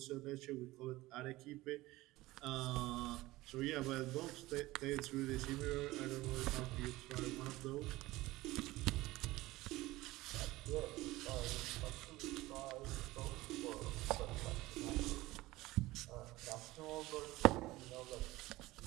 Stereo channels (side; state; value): left; quieter; 18.7 dB